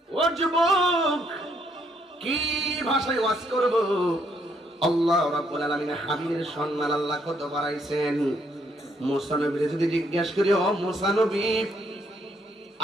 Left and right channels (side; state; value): both; normal; correlation 0.71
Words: ও যুবক, কি ভাষায় ওয়াজ করব? আল্লাহ রাব্বুল আলামিন হাবিবের সম্মান আল্লাহ কত বাড়াইছেন। মুসা নবীরে যদি জিজ্ঞাসা করি, ও মুসা নবী,